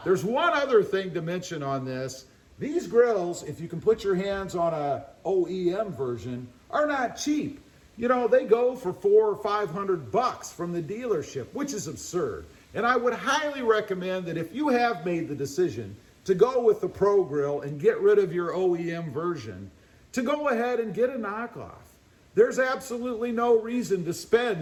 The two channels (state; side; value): identical; both; correlation 1.00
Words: there's one other thing to mention on this. These grills, if you can put your hands on a OEM version, are not cheap. You know, they go for $400 or $500 from the dealership, which is absurd. And I would highly recommend that if you have made the decision to go with the Pro Grill and get rid of your OEM version, to go ahead and get a knockoff. There's absolutely no reason to